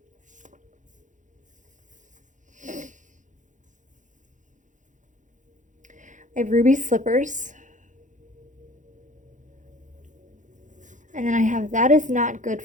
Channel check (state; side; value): late; left; 0.36 ms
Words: I have ruby slippers. And then I have, that is not good